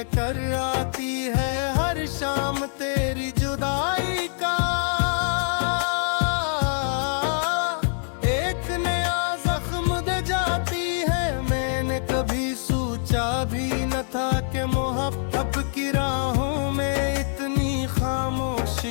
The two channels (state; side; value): silent; right; digital silence